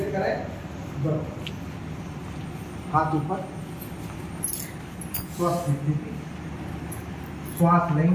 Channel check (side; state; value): both; identical; correlation 1.00